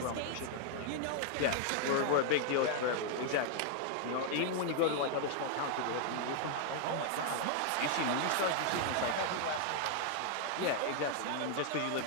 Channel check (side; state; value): both; different; correlation 0.00